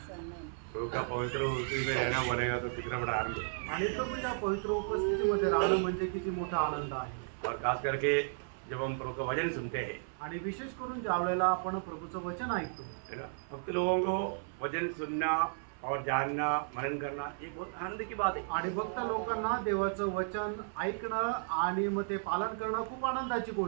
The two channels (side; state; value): left; silent; 55 dB below the other